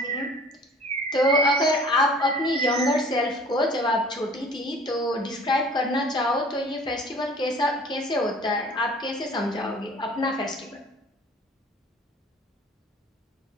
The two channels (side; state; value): both; normal; correlation 0.49